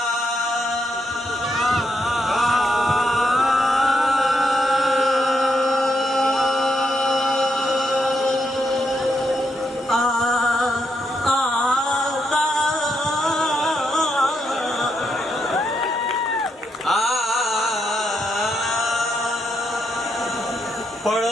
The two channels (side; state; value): both; normal; correlation 0.80